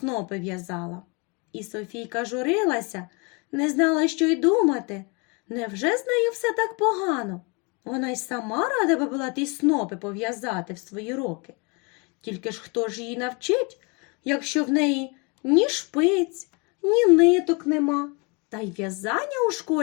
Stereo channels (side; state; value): right; quieter; 30.7 dB